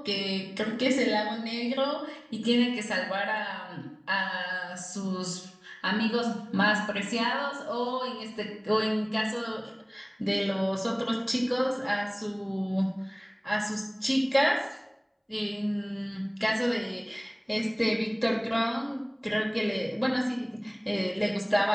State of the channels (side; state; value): both; identical; correlation 1.00